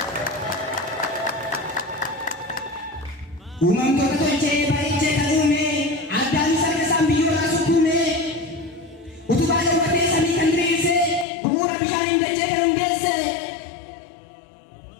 Uumamtoota tolchee bareechee kan uume addaan sarara isaan biyyoorraa sukkuume utubaa dawwatee samii kan diriirse bu'uura bishaaniin dachee kan hundeesse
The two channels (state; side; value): drops out; right; at 11.2 s